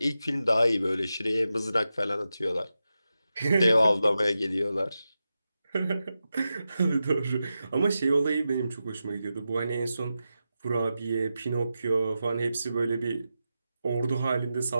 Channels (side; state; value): both; inverted; correlation -0.91